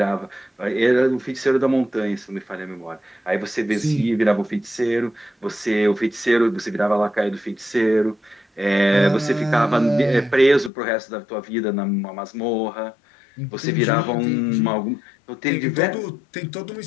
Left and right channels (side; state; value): right; drops out; at 10.7 s